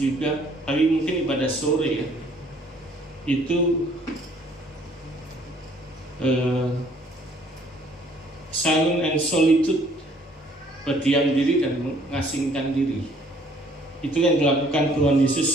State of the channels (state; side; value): normal; both; correlation 0.61